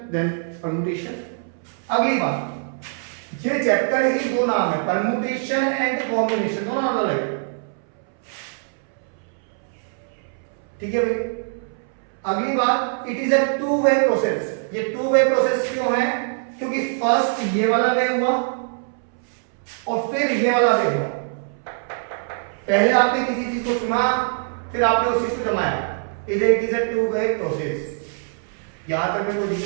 देन परमुटेशन। अगली बात, ये चैप्टर ही 2 नाम है, परमुटेशन एंड कॉम्बिनेशन, दोनों अलग अलग। ठीक है भाई। अगली बात, it is a 2 way process. ये 2 वे प्रोसेस क्यों है? क्योंकि फर्स्ट ये वाला वे हुआ और फिर ये वाला वे हुआ। पहले आपने किसी चीज को चुना, फिर आपने उस चीज को जमाया। It is a 2 way process. यहां तक में कोई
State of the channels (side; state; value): left; silent; 63 dB below the other